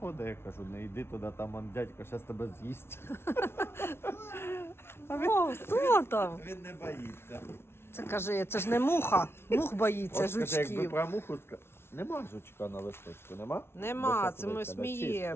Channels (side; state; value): right; late; 0.12 ms